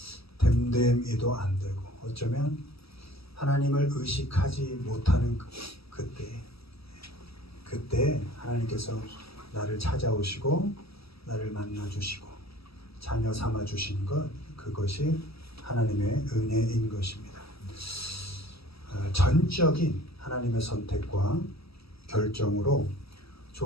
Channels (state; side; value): late; right; 0.76 ms